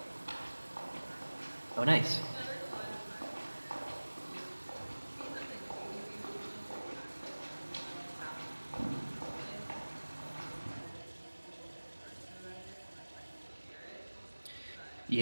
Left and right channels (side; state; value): both; inverted; correlation -1.00